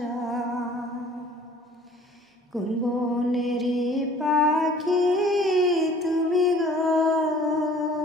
কোন বনেরই পাখি তুমি গো,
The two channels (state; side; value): normal; both; correlation 0.51